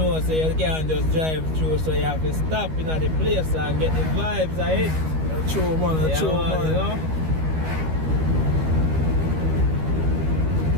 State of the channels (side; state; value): left; late; 13 ms